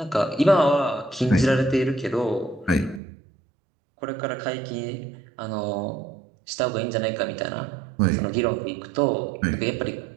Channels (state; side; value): drops out; left; at 3.0 s